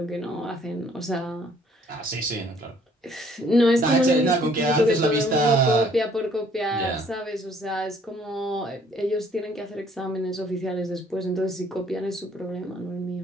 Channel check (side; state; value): both; normal; correlation 0.61